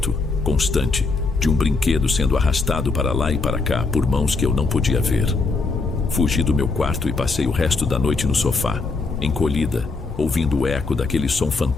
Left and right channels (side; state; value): right; quieter; 3.9 dB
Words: constante, de um brinquedo sendo arrastado para lá e para cá por mãos que eu não podia ver. Fugi do meu quarto e passei o resto da noite no sofá, encolhida, ouvindo o eco daquele som